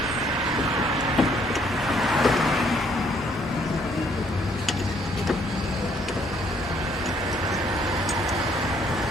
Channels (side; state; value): both; normal; correlation 0.66